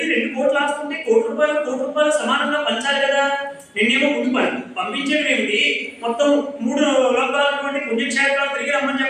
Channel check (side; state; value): both; identical; correlation 1.00